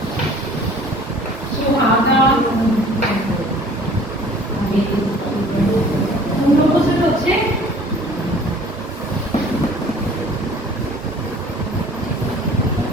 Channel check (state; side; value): normal; both; correlation 0.50